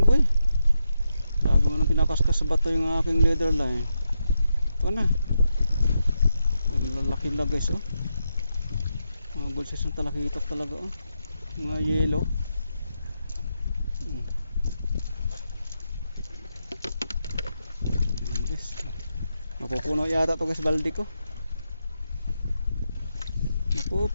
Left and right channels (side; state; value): both; inverted; correlation -0.85